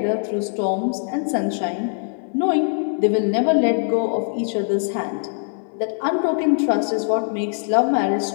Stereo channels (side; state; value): right; silent; 60 dB below the other